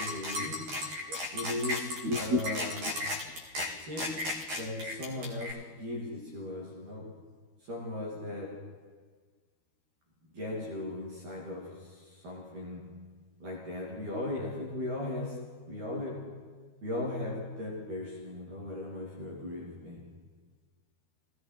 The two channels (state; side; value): late; left; 13 ms